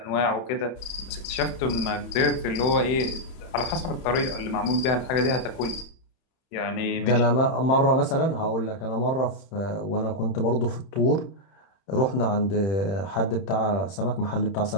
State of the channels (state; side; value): late; right; 31 ms